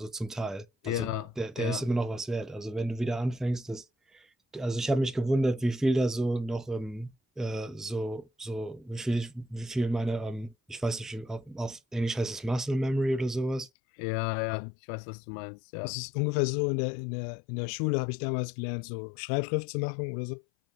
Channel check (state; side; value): drops out; right; at 13.7 s